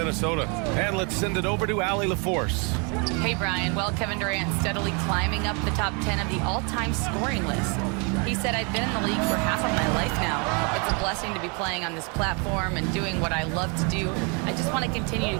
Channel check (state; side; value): quieter; left; 33.8 dB